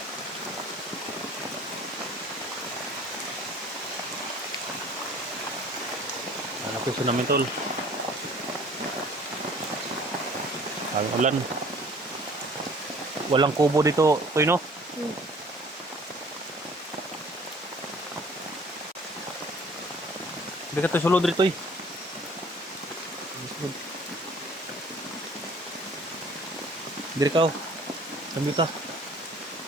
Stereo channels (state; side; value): normal; both; correlation 0.51